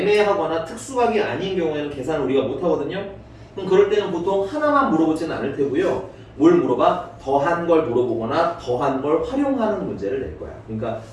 특수각이 아닌 경우에는 계산을 우리가 못 하거든요. 그럼 그럴 때는 보통 하나만 물어보지는 않을 테고요. 뭘 물어봐? 더한 걸 물어보거나 더한 걸 활용하는 문제를 낼 거야. 그러니까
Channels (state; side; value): identical; both; correlation 1.00